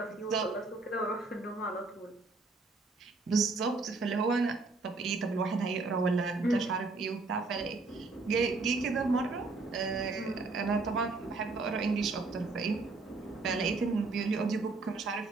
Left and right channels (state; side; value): quieter; left; 3.7 dB